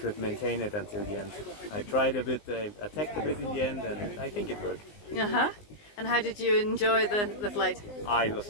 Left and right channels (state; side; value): late; right; 19 ms